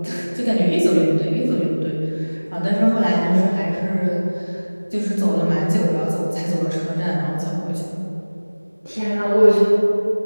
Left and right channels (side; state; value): both; inverted; correlation -1.00